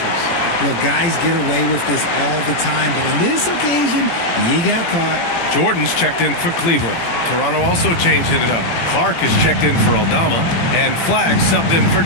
Look, guys get away with this all the time, but on this occasion, he got caught. Jordan's checked in for Cleveland. Toronto also changed it up. Clark is checked in for Aldama, and Flagg subbed in for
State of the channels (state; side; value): late; right; 17 ms